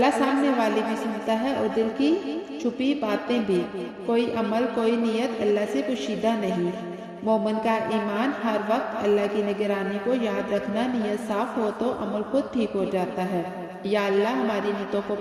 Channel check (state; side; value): identical; both; correlation 1.00